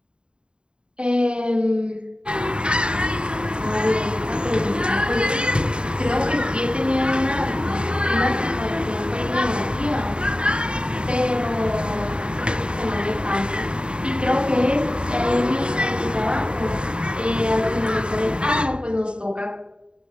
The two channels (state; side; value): late; left; 0.052 ms